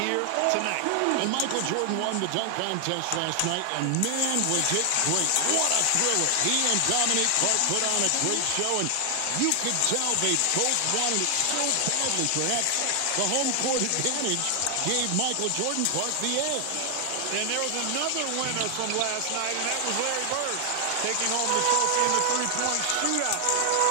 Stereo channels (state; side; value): different; both; correlation 0.00